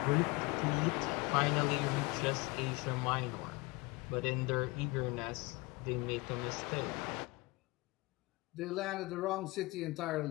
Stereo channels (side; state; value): right; quieter; 24.0 dB